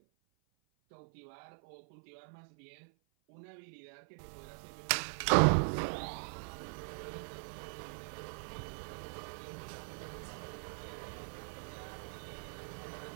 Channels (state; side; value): silent; left; 51 dB below the other